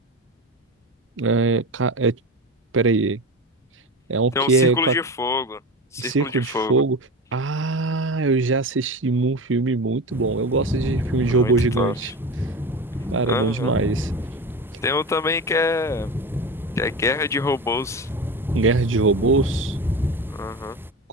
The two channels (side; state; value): both; normal; correlation 0.25